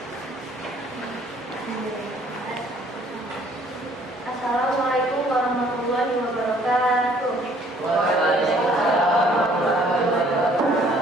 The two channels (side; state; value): both; normal; correlation 0.59